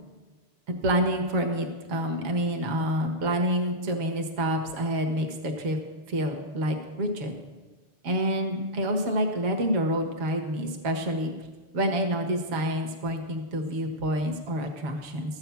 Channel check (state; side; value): late; left; 7.2 ms